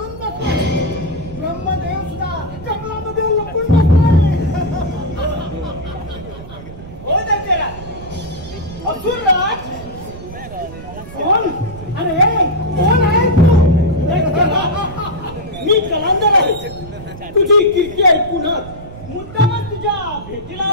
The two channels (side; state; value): right; noise; rumble, 14 dB below the sound